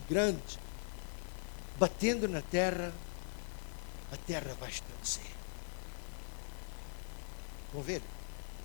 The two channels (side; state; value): right; silent; 50 dB below the other